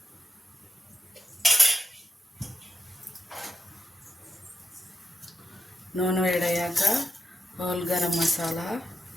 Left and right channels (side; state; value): both; normal; correlation 0.87